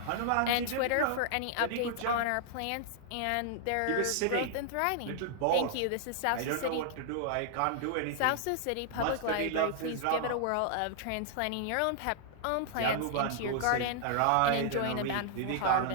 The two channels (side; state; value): both; different; correlation -0.01